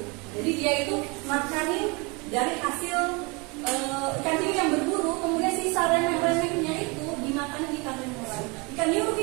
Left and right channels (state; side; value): quieter; left; 28.9 dB